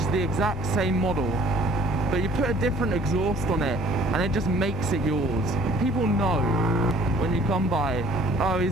the exact same model, but you put a different exhaust on it and it just makes it yours. People know when you come by, oh, he's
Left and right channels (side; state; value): both; normal; correlation 0.54